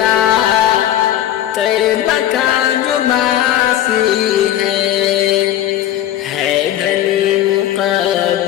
طیبہ کا جو باسی ہے دھنی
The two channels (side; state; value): right; quieter; 12.1 dB